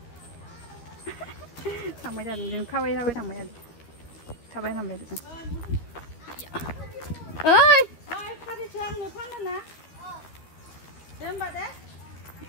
장마자 좀 카와이 사와이 장마자 사바이 삼배 좀 어이 카리 저항 너 파면나? 뱀바데?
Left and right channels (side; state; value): right; late; 13 ms